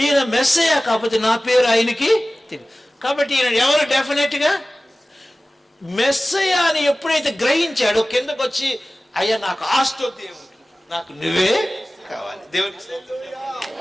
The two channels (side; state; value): both; normal; correlation 0.97